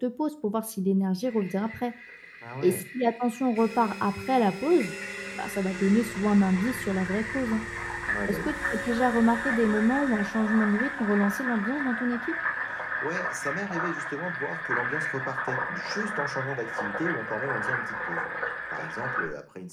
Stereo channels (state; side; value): identical; both; correlation 1.00